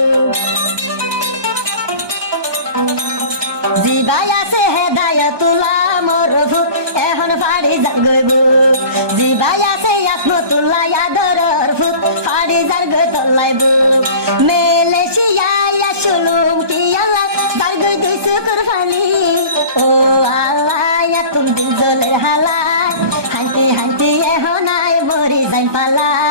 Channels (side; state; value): left; late; 1.2 ms